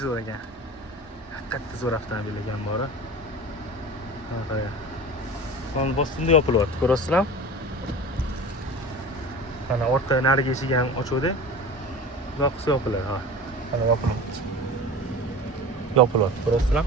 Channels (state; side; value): normal; both; correlation 0.34